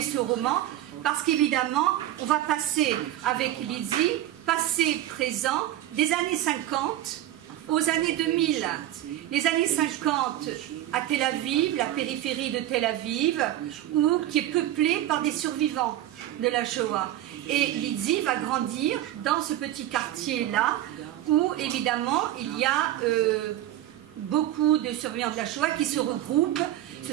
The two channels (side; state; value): left; quieter; 13.3 dB